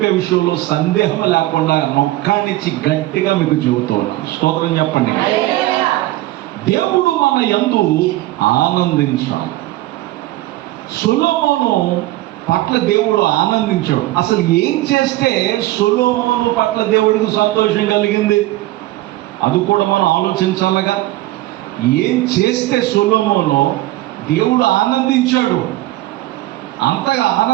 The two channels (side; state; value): left; quieter; 17.1 dB